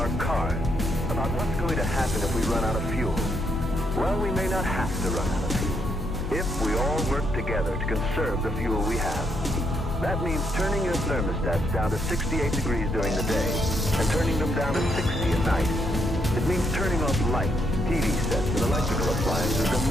cars, about what's going to happen if we run out of fuel. Well, we may not have to run out of fuel if we all work together to conserve the fuel we have. That means turning your thermostats down to 68 degrees during the day and turning them down to 60 at night. It means turning off lights, TV sets, and electrical appliances the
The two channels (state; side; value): normal; both; correlation 0.76